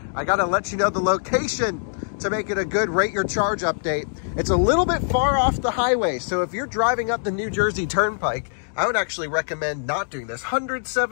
I gotta let you know the location to make it a good rate your charge update. It's a little bit far off the highway, so if you're driving up the New Jersey Turnpike, I would actually recommend not doing this.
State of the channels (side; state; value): right; silent; digital silence